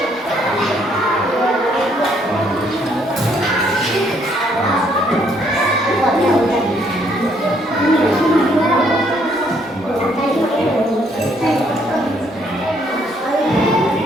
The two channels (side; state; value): both; normal; correlation 0.68